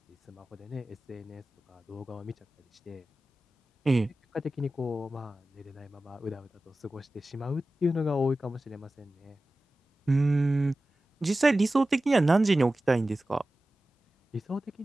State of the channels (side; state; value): both; normal; correlation 0.95